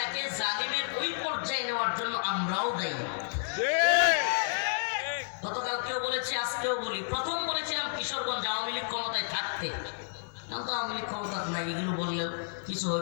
জালিমের ওই পর্যায়ে নেওয়ার জন্য আমরাও দায়ী। গতকালকেও বলেছি, আজকেও বলি। প্রথম বলেছিলাম কিশোরগঞ্জ আওয়ামী লীগ ক্ষমতায় থাকতে, তো আওয়ামী লীগ ক্ষমতা নাই, এগুলো বললেও কিছু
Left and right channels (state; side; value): silent; right; digital silence